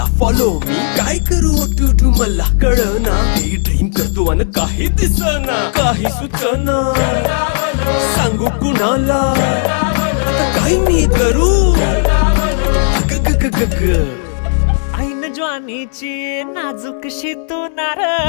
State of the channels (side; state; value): right; silent; 66 dB below the other